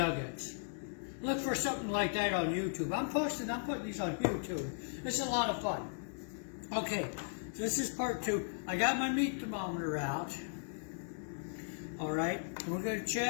Look for something like that on YouTube. I'm putting these on YouTube. This is a lot of fun. Okay, so this is part two. I got my meat thermometer out. All right, we're gonna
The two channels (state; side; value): silent; right; 53 dB below the other